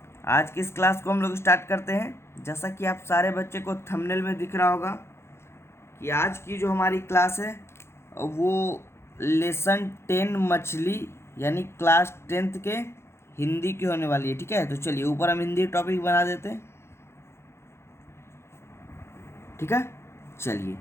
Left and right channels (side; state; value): right; late; 0.12 ms